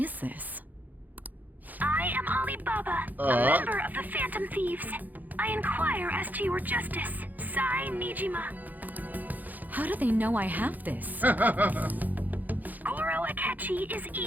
this? I am Alibaba, a member of the Phantom Thieves. I inquire as to your justice, Sai Nijima. How do they know I have this? Goro Akechi is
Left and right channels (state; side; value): late; left; 0.083 ms